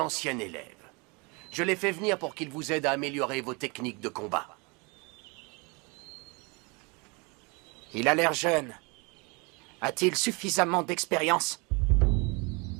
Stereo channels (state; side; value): quieter; left; 29.4 dB